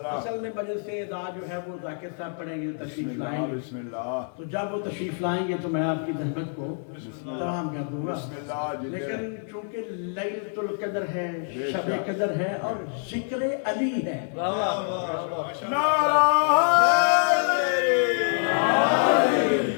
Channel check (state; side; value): silent; right; 58 dB below the other